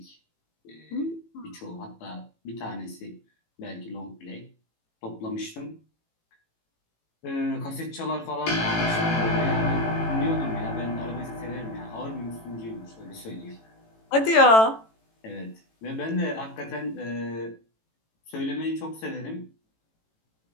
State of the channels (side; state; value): right; late; 18 ms